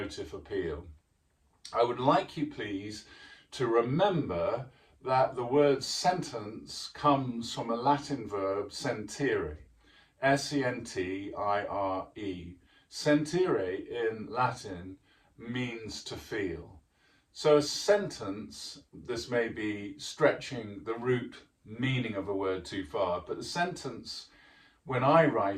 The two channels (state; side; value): identical; both; correlation 1.00